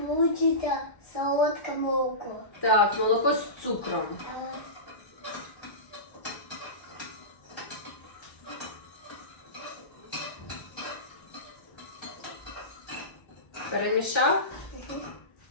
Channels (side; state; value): right; late; 1.3 ms